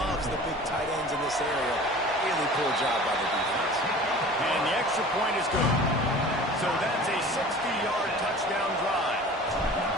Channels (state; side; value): normal; both; correlation 0.42